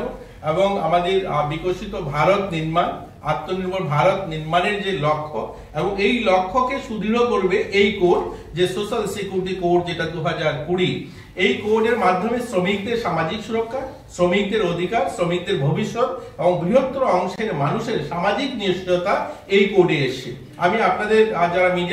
এবং আমাদের বিকশিত ভারত নির্মাণ, আত্মনির্ভর ভারত নির্মাণের যে লক্ষ্য এবং এই লক্ষ্যকে সুদৃঢ় করবে এই কোড, যে সোশ্যাল সিকিউরিটি কোড, যেটা 2020। এই কোডের মাধ্যমে শ্রমিকদের সামাজিক সুরক্ষা, শ্রমিকদের অধিকার, শ্রমিকদের ভবিষ্যৎ এবং বৃহত্তর অংশের মানুষের সামাজিক নিশ্চয়তা এই কোডে এসছে। আমি আপনাদের যারা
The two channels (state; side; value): identical; both; correlation 1.00